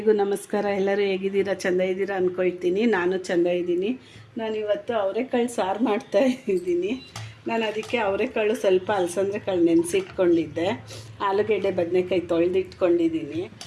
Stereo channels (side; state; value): both; identical; correlation 1.00